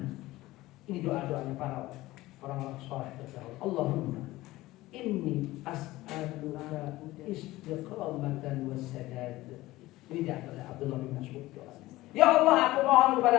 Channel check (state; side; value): quieter; right; 17.9 dB